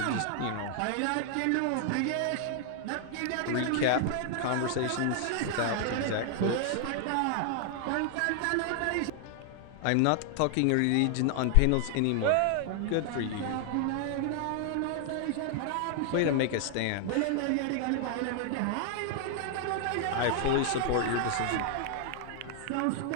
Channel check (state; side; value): different; both; correlation 0.00